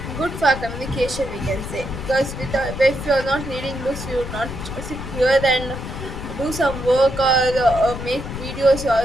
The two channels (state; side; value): noise; left; rumble, 8 dB below the sound